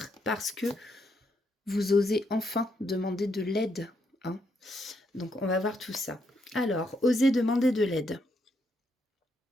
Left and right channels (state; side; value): normal; both; correlation 0.77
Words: parce que vous osez enfin demander de l'aide, hein. Donc on va voir tout ça. Alors, osez demander de l'aide.